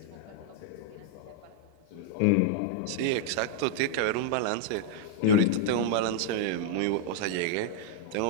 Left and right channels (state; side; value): different; both; correlation 0.00